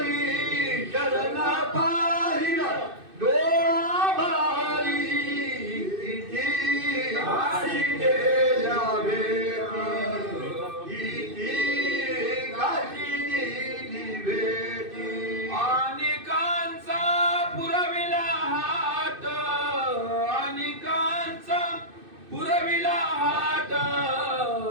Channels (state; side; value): late; left; 2.6 ms